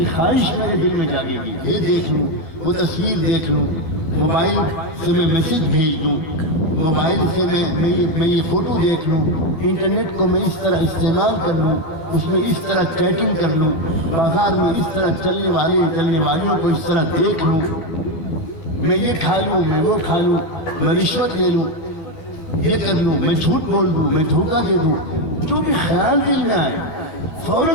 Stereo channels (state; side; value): late; right; 12 ms